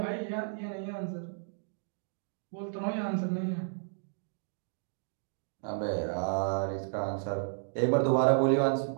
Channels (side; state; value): left; silent; digital silence